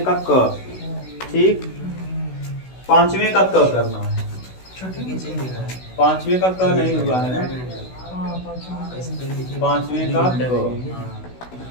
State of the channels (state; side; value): late; right; 16 ms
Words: का क, ठीक। पांचवें का क करना है, पांचवें का क नहीं हुआ है ना, पांचवें का क,